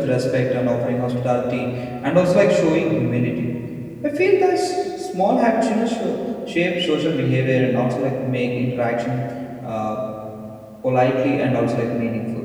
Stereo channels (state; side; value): identical; both; correlation 1.00